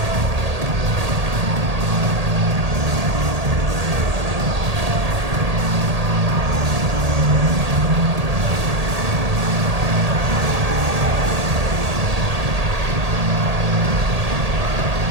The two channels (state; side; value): late; left; 1.8 ms